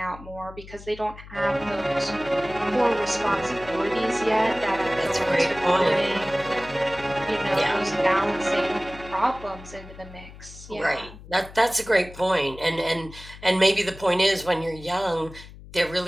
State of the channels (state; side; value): noise; left; hum, 17 dB below the sound